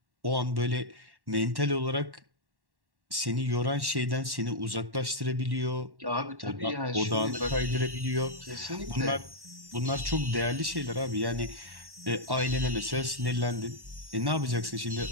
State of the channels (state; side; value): late; left; 1.1 ms